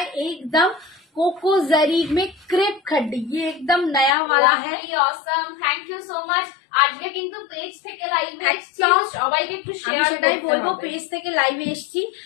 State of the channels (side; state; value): right; drops out; at 4.2 s